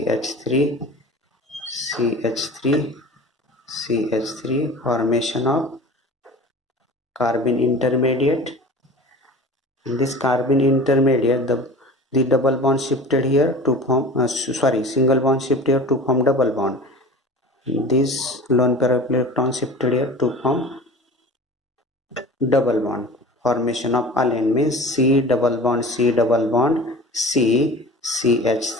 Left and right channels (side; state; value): both; normal; correlation 0.38